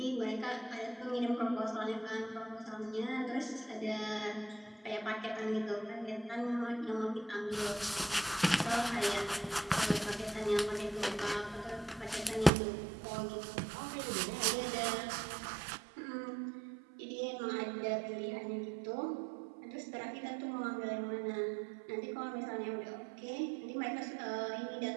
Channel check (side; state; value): left; drops out; at 12.5 s